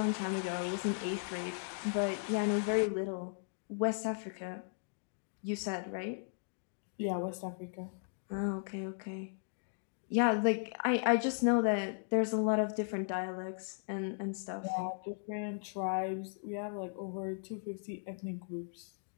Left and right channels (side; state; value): right; silent; digital silence